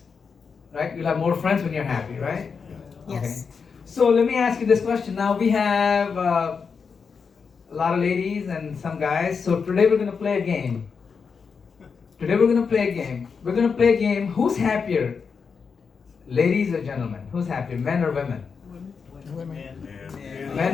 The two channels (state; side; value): quieter; right; 5.7 dB